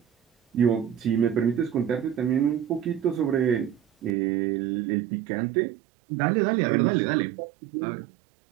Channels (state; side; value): drops out; left; at 4.2 s